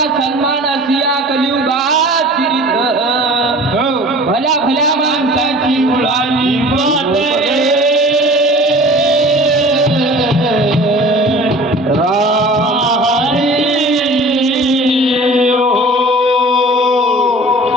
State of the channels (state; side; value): normal; both; correlation 0.43